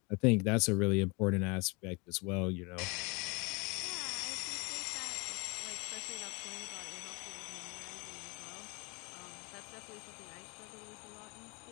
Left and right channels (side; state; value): right; quieter; 29.4 dB